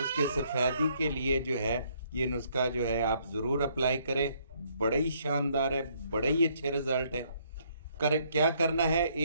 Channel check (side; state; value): both; inverted; correlation -0.68